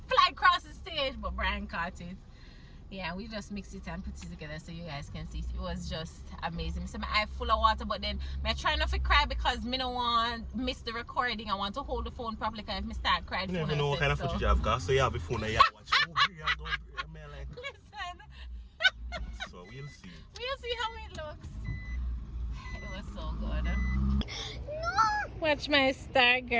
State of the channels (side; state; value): both; identical; correlation 1.00